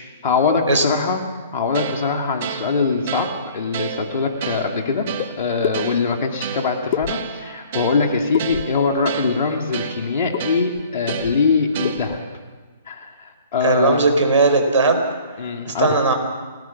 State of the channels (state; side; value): inverted; both; correlation -0.49